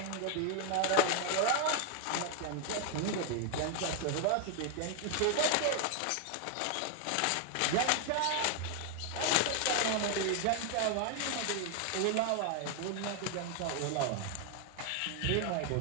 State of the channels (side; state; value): both; different; correlation 0.01